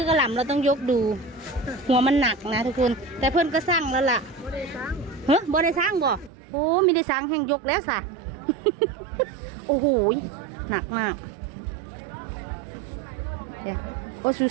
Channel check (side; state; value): left; drops out; at 6.3 s